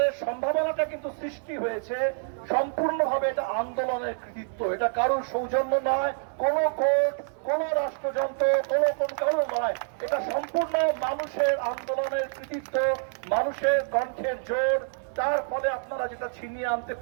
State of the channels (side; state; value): left; silent; 60 dB below the other